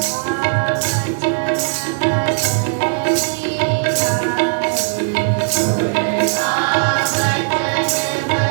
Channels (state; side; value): silent; left; digital silence